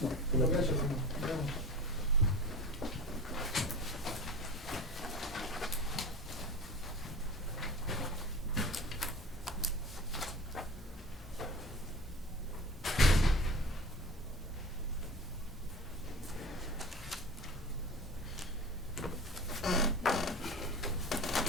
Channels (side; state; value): both; normal; correlation 0.36